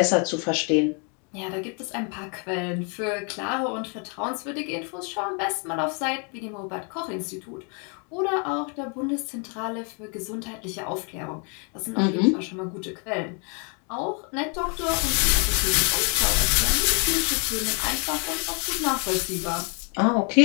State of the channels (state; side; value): quieter; right; 37.5 dB